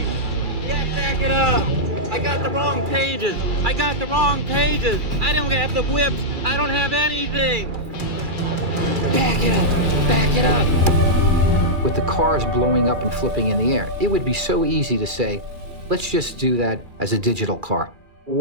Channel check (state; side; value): late; left; 2.3 ms